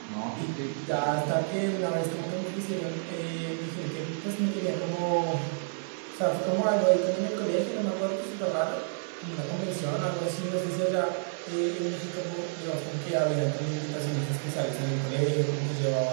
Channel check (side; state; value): left; silent; digital silence